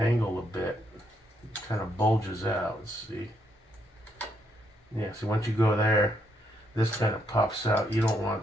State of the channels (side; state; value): both; normal; correlation 0.76